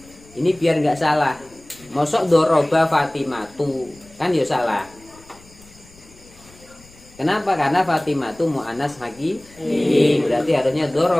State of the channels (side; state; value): left; noise; rumble, 25 dB below the sound